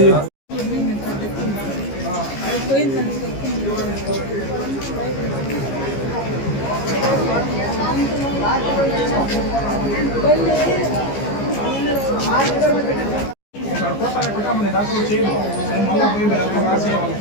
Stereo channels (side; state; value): right; late; 15 ms